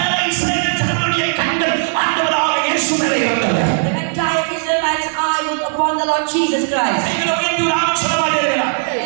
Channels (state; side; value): silent; left; digital silence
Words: இஸ்ரவேல் ஜனங்களுடைய கண்கள் ஆண்டவராக இயேசு மேலே இருந்தது. the entire Israelites' eyes were upon the Lord Jesus Christ. கைகளை உயர்த்தி ஒரு ஆமென் சொல்ல மாட்டீர்களா?